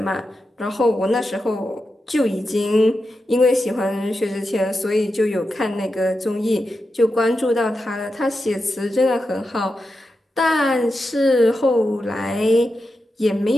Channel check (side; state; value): both; normal; correlation 0.89